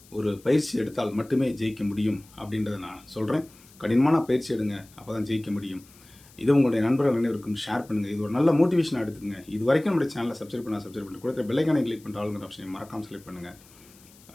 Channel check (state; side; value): noise; left; hiss, 25 dB below the sound